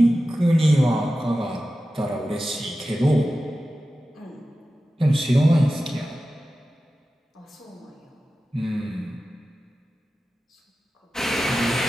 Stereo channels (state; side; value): normal; both; correlation 0.94